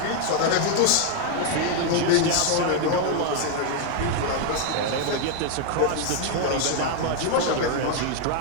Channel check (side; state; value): both; different; correlation 0.00